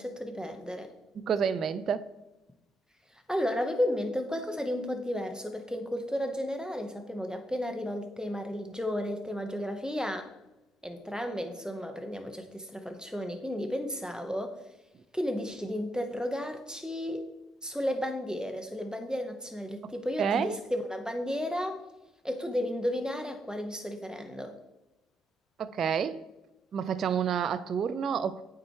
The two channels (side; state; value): both; normal; correlation 0.80